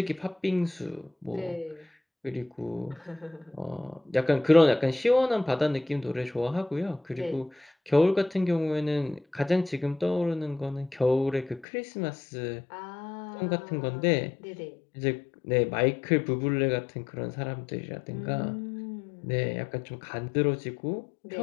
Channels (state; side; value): drops out; right; at 11.7 s